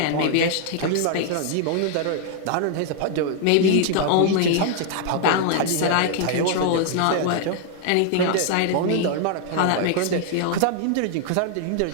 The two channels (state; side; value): different; both; correlation 0.00